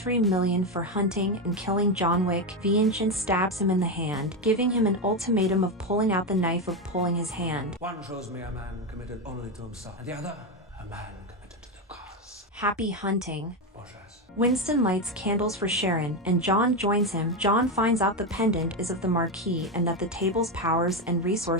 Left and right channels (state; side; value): normal; both; correlation 0.11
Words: million for hunting and killing John Wick. Vincent stabs him in the hand, giving him an ultimatum of pulling out the knife of pulling his hand. One shows me a man committed only to himself, and the other, a man committed to the cause. Happy hunting. Bourgeois. Winston lights candles for Sharon, and John joins him. John finds out the pendant is of the Marquis and that the table's powers and